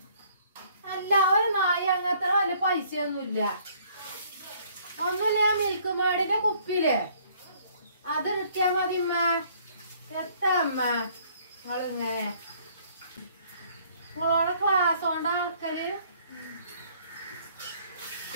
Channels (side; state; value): both; inverted; correlation -0.61